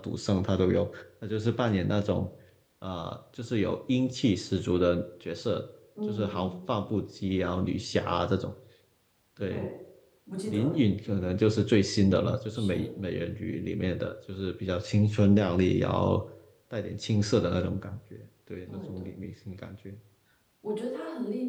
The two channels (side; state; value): both; identical; correlation 1.00